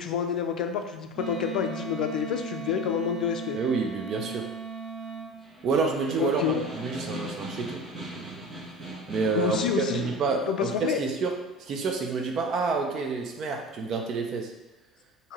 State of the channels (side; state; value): both; normal; correlation 0.32